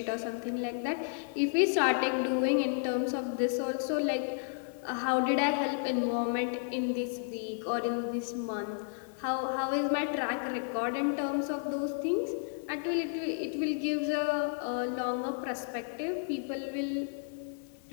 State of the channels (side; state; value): right; silent; 56 dB below the other